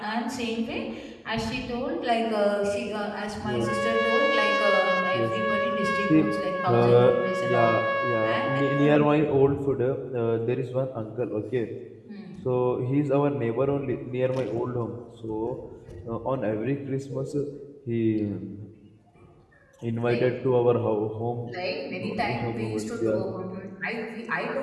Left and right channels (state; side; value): identical; both; correlation 1.00